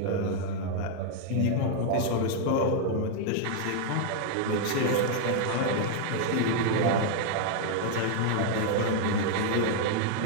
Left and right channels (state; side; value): different; both; correlation 0.00